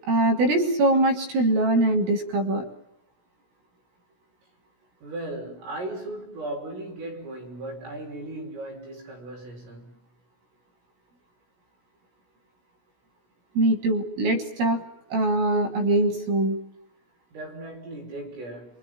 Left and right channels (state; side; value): late; left; 17 ms